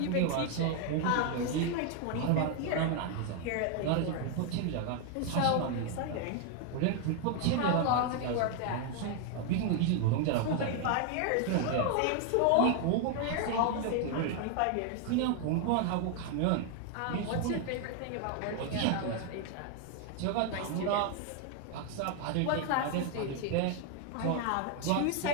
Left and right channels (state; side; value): different; both; correlation 0.00